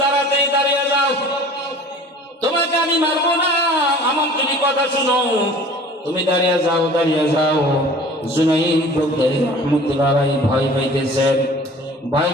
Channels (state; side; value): normal; both; correlation 0.45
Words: দাঁড়িয়ে যাও, তোমাকে আমি মারবো না, আমার তুমি কথা শুনো, তুমি দাঁড়িয়ে যাও। জুনাইদ বুগদাদি রাহমাতুল্লাহ আলাইহি ভয়